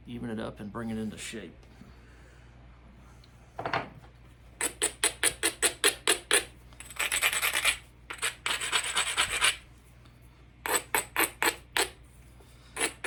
even it up and bring it into shape.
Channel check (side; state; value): both; identical; correlation 1.00